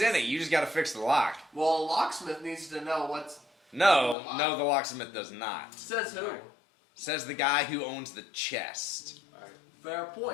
in it? You just gotta fix the lock. Well, a locksmith needs to know what's... No, the locksmith does not. Says who? Says the guy who owns the chest. Fair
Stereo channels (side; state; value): right; drops out; at 4.2 s